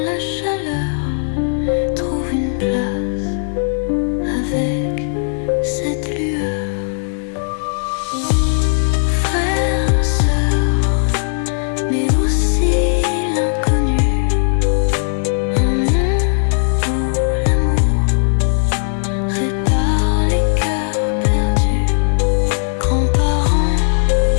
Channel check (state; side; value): silent; right; digital silence